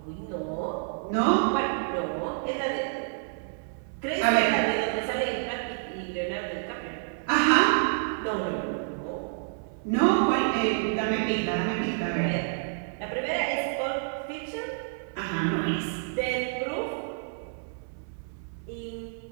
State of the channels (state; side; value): silent; left; 59 dB below the other